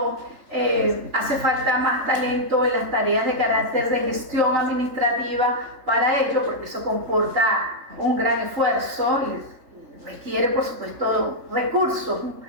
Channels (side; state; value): left; late; 3.4 ms